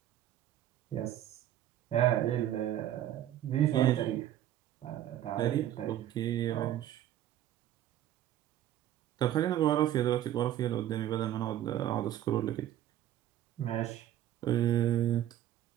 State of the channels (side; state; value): left; quieter; 12.2 dB